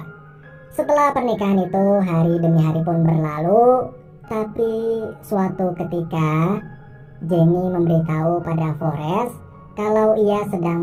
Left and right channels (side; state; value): both; identical; correlation 1.00